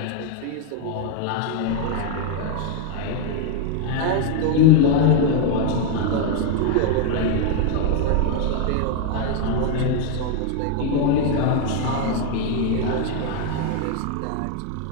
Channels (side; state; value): both; different; correlation 0.00